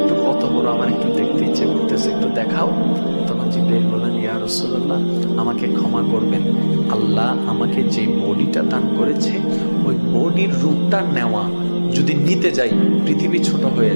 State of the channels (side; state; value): both; inverted; correlation -1.00